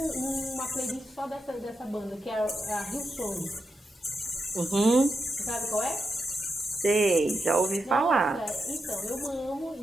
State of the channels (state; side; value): normal; both; correlation 0.86